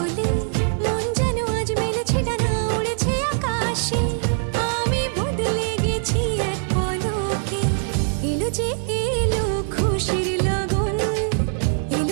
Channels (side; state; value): left; silent; 64 dB below the other